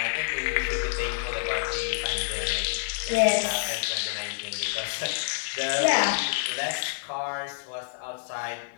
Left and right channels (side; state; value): right; silent; 60 dB below the other